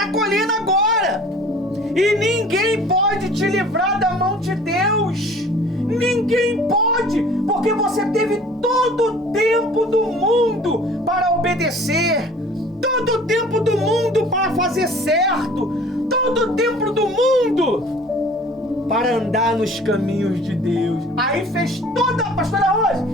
colhendo agora. E ninguém pode te livrar da mão de Deus. Ninguém pode. Porque você teve todo o tempo do mundo para obedecer. Todo o tempo do mundo para fazer certo. Todo o tempo do mundo para andar nos caminhos de Deus. Aí fez toda, pastora Rose,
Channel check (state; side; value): normal; both; correlation 0.48